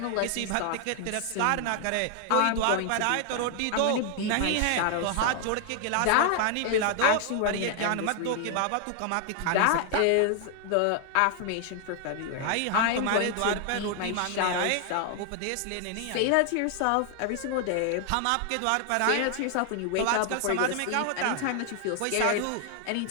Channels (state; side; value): different; both; correlation 0.00